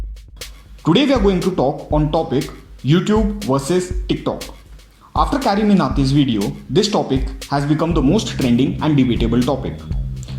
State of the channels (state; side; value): identical; both; correlation 1.00